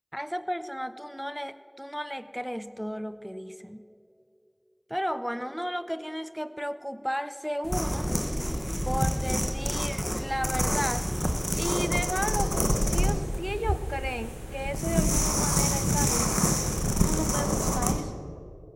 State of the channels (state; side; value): identical; both; correlation 1.00